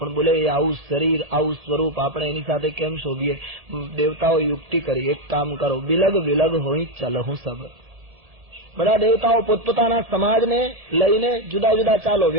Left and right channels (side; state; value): left; late; 1.7 ms